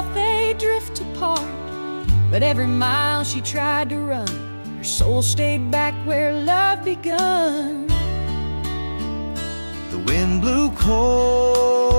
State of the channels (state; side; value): inverted; both; correlation -1.00